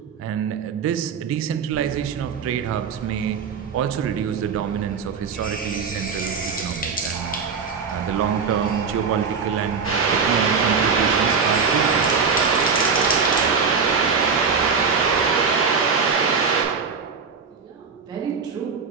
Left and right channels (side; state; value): left; quieter; 5.6 dB